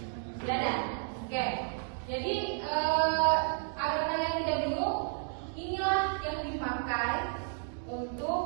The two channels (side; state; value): left; silent; 56 dB below the other